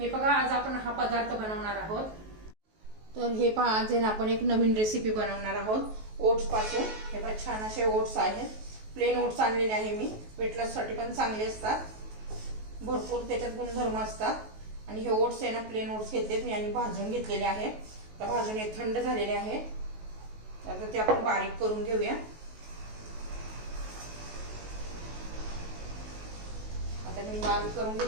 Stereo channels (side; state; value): left; late; 19 ms